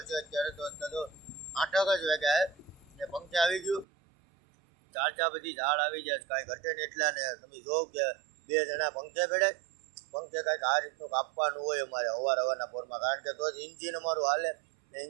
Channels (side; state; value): left; drops out; at 3.9 s